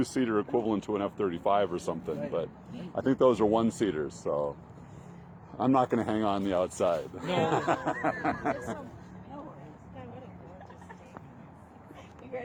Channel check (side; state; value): both; identical; correlation 1.00